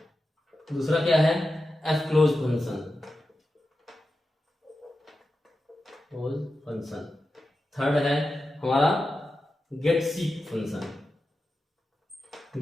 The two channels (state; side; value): normal; both; correlation 0.91